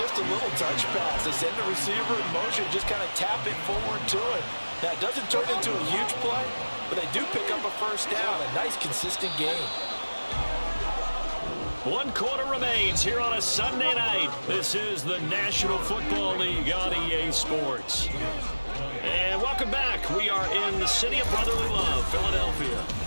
a little touch pass. They send the receiver in motion, just kind of tap it forward to it. Now, it doesn't turn into a huge play, but they do pick up a first down, a nice, consistent game. 1 quarter remains here on a Sunday night. This is the National Football League on EA Sports. And welcome back. We are in the city of brotherly love, Philadelphia.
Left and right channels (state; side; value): inverted; both; correlation -1.00